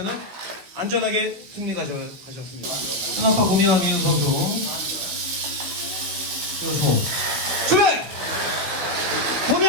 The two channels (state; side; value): late; left; 15 ms